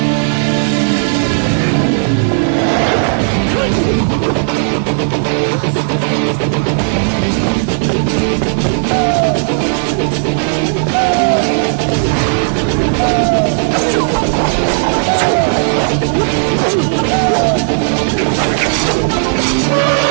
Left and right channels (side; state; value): left; silent; digital silence